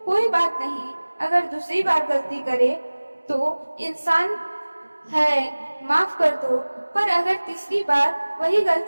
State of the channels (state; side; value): inverted; both; correlation -1.00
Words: कोई बात नहीं, अगर दूसरी बार गलती करे तो इंसान है, माफ कर दो। पर अगर तीसरी बार वही